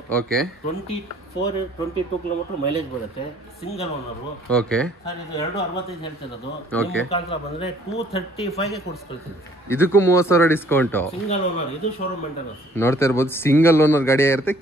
ಓಕೆ, 22 ಕಿಲೋಮೀಟರ್ ಮೈಲೇಜ್ ಬರುತ್ತೆ. Single owner. ಓಕೆ ಸರ್, ಇದು 265 ಹೇಳ್ತಿರೋದು. ಮುಖಾಂತರ ಬಂದ್ರೆ 235 ಕೊಡಿಸ್ಕೊಳ್ತೀನಿ. ಇದಕ್ಕೂ 30,000 ಡಿಸ್ಕೌಂಟ್. ಸಿಂಗಲ್ ಓನರ್, ಇದು ಶೋರೂಮ್ ಮೇಂಟೆನೆನ್ಸ್. ನೋಡ್ತಾ ಇರ್ಬೋದು ಸಿಂಗಲ್ ಓನರ್ ಗಾಡಿ ಇರುತ್ತೆ.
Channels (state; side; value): normal; both; correlation 0.58